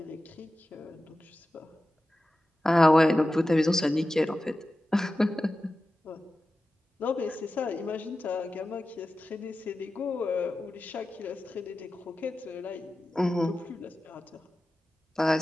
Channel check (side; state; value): both; normal; correlation 0.94